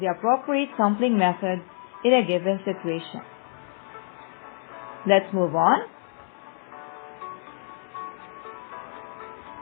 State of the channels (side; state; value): right; silent; digital silence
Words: the appropriate sampling method in a given situation. Let's move on.